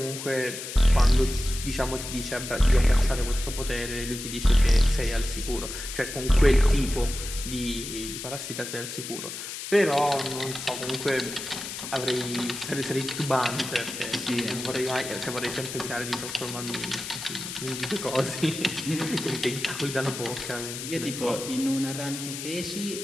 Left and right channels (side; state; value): left; noise; hiss, 8 dB below the sound